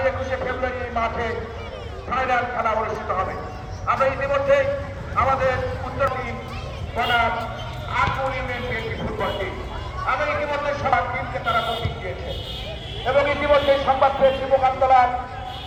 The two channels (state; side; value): identical; both; correlation 1.00